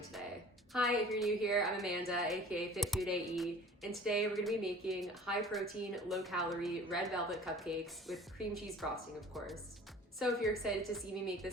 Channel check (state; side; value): normal; both; correlation 0.45